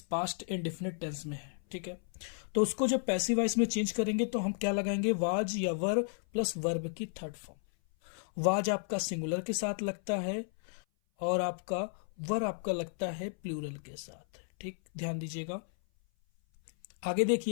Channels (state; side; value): silent; right; 55 dB below the other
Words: पास्ट इंडेफिनिट टेंस में है। ठीक है, तो उसको जब पैसिव वॉइस में चेंज करेंगे तो हम क्या लगाएंगे, वाज या वर प्लस वर्ब की थर्ड फॉर्म। वाज आपका सिंगुलर के साथ लगता है और आपका वर आपका लगता है प्लूरल के साथ। ठीक, ध्यान दीजिएगा। आगे